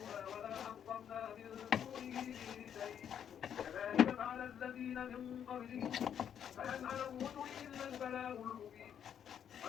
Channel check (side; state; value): right; quieter; 8.8 dB